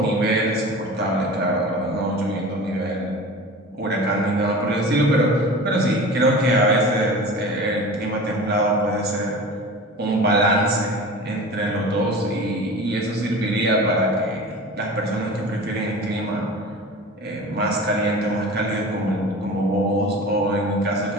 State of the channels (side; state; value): both; normal; correlation 0.36